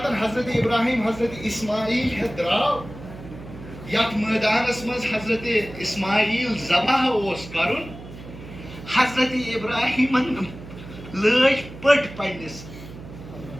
حضرت ابراہیٖم حضرت اسماعیل ہٮ۪تھ درٛاو یتھ مٲدانس منٛز حضرت اسماعیل ذبح اوس کرُن حضرت ابراہیٖمن لٲج پٔٹۍ پننِس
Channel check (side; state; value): right; noise; hum, 15 dB below the sound